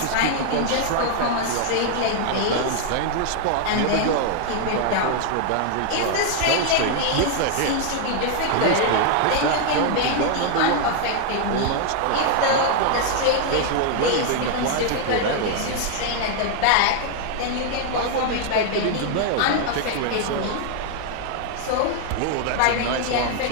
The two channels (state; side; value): different; both; correlation 0.00